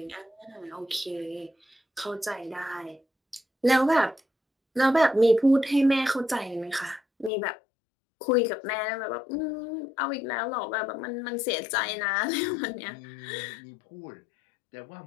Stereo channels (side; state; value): right; drops out; at 7.3 s